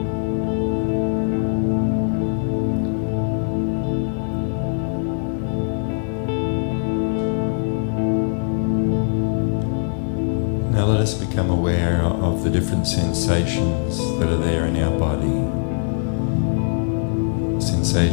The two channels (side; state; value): right; silent; 65 dB below the other